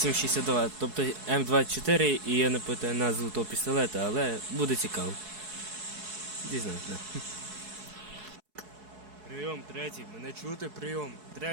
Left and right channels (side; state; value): left; late; 4.7 ms